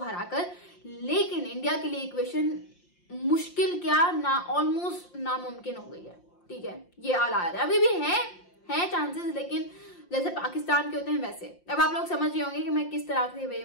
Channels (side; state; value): right; late; 5.7 ms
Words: लेकिन इंडिया के लिए इक्वेशन मुश्किल क्या ना ऑलमोस्ट नामुमकिन हो गई है, ठीक है, ये हालात है। अभी भी है चांसेस, लेकिन जैसे पाकिस्तान के होते हैं वैसे। अब आप लोग समझ रहे होंगे कि मैं किस तरह के वे